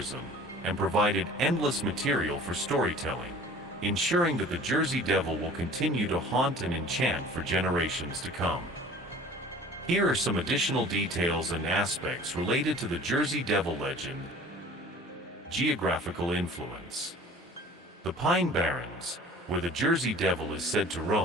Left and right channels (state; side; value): normal; both; correlation 0.46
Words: and provided endless material for storytelling, ensuring that the Jersey Devil will continue to haunt and enchant for generations to come. Here are some additional details and aspects related to the Jersey Devil legend. Geographical influence. The Pine Barrens, where the Jersey Devil is said to